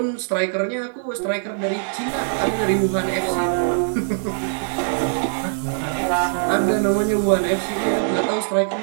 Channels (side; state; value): left; silent; digital silence